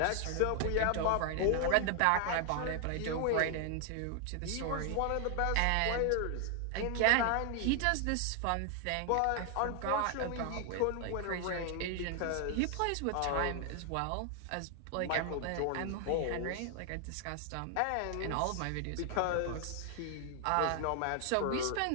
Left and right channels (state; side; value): different; both; correlation 0.00